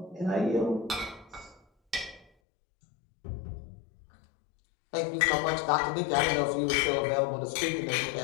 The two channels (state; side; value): drops out; right; at 2.2 s